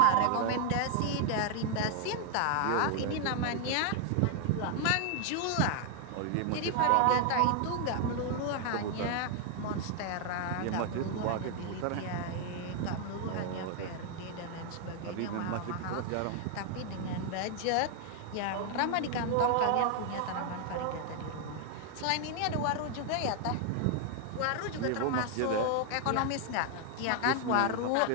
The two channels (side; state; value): both; different; correlation 0.00